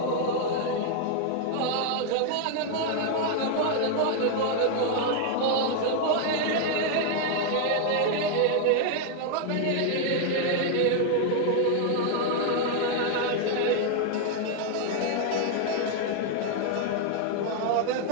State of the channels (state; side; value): different; both; correlation 0.00